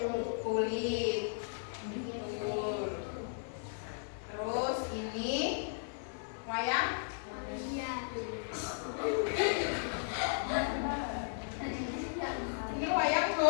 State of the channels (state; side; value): silent; right; 54 dB below the other